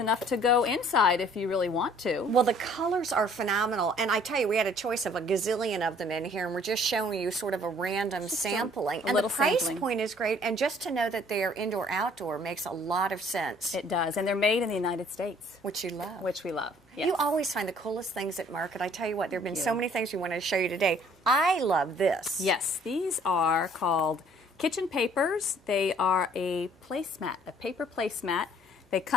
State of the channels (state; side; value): normal; both; correlation 0.57